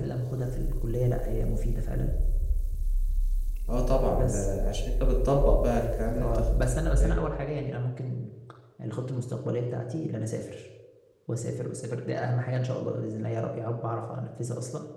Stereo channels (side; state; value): both; identical; correlation 1.00